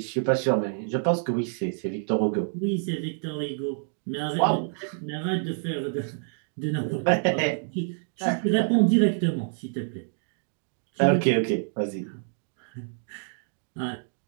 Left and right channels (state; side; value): silent; left; digital silence